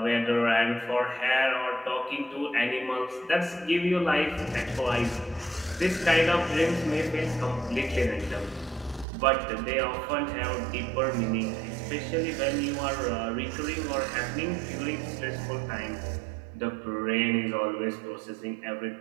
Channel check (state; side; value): drops out; left; at 9.1 s